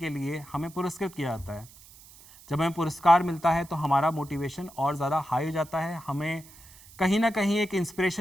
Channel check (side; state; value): right; noise; hiss, 22 dB below the sound